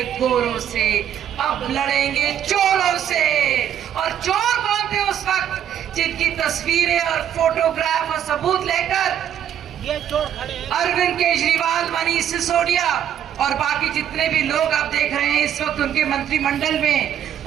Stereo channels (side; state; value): left; quieter; 9.9 dB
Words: गोरों से, अब लड़ेंगे चोरों से। और चोर कौन थे उस वक्त? जिनकी तस्वीरें और फोटोग्राफ और सबूत लेकर ये चोर खड़े हैं। अरविंद केजरीवाल, मनीष सिसोदिया और बाकी जितने भी लोग आप देख रहे हैं इस वक्त उनके मंत्रिमंडल